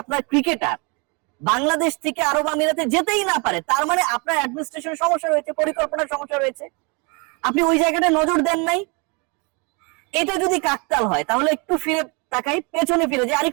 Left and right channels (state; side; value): quieter; left; 31.4 dB